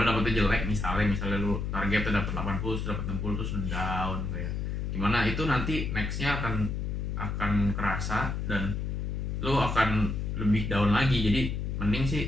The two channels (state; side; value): noise; left; hum, 2 dB below the sound